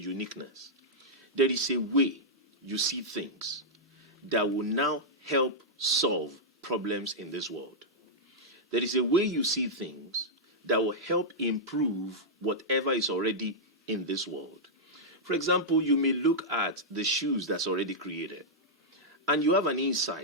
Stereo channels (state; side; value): normal; both; correlation -0.08